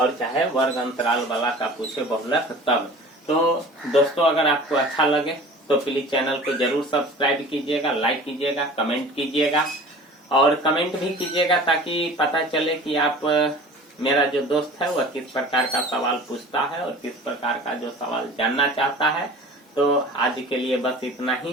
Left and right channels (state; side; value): normal; both; correlation 0.42